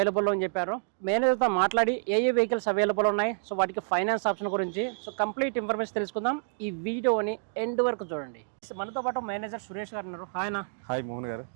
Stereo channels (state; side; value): silent; left; digital silence